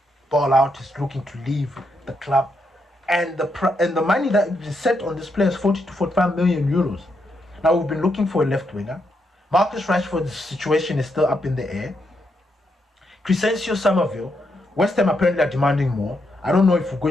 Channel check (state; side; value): normal; both; correlation 0.80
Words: ball out, is looking to leave the club. And the money that is set on this player is 40 to 45 million euros. Now, we've been looking for a left winger. Marcus Rashford's situation is still up in the air. Crescencio Somerville, West Ham apparently are demanding more. I don't know if we're